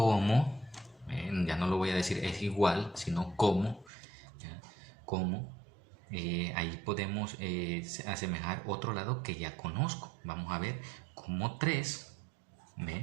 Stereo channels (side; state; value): left; drops out; at 3.9 s